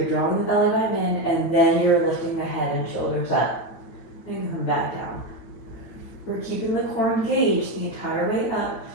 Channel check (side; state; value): right; late; 9.0 ms